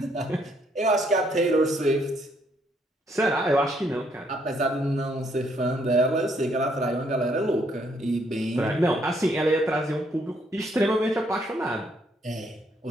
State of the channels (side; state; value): both; normal; correlation 0.70